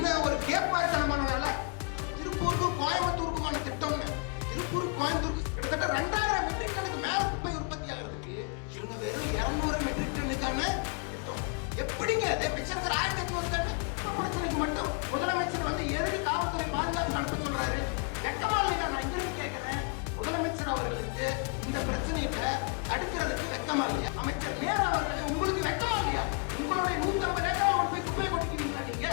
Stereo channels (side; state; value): right; quieter; 34.0 dB